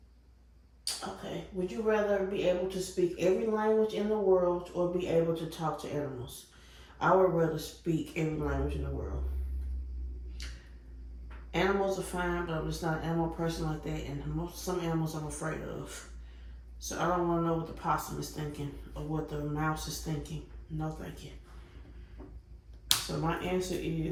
Okay, would you rather be able to speak every language in the world or be able to talk to animals? I would rather speak every language in the world. Animals are fine, but I'm just not an animal person like that, and some animals I'm afraid of. So I don't want to know what the possum is thinking or what the mouse is thinking. No, thank you. So my answer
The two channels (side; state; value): both; identical; correlation 1.00